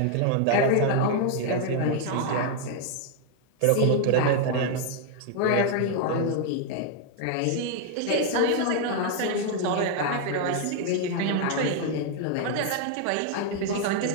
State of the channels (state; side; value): different; both; correlation 0.00